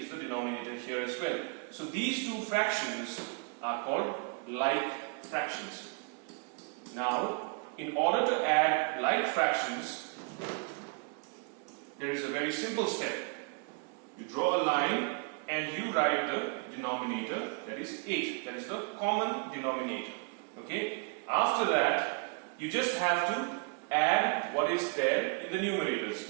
the denominator here as well. So these two fractions are called like fractions. Now, in order to add like fractions, there is a very simple step. You draw a line and you write the denominator, that is 8. That is the common denominator. Okay? After that, you just have to add what is there in the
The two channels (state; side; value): quieter; left; 35.2 dB